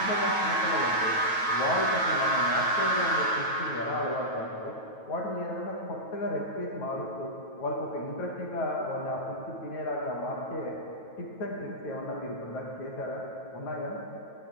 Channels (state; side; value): late; right; 9.2 ms